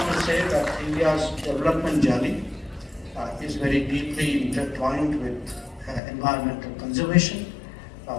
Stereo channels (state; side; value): drops out; right; at 6.0 s